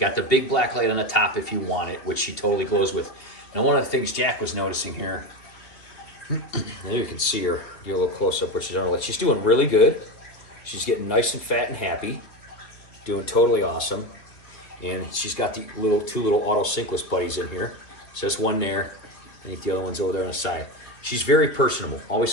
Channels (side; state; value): right; late; 2.5 ms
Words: the big black light on the top if you want it, which she totally glows with. Now, one of the things Jack was noticing here, there you can see her, get a little close up where she's on her light. She's doing really good. She's getting nice and fat and happy, doing totally awesome. And she's got the two little auto synkless buddies in here. So that's one there. I think the other one's over there on the side. She's very personable.